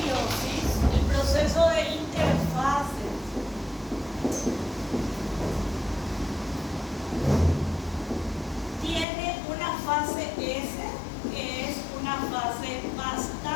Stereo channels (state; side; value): drops out; right; at 9.1 s